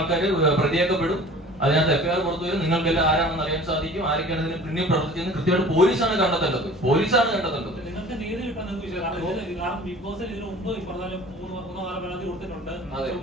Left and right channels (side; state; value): both; normal; correlation 0.45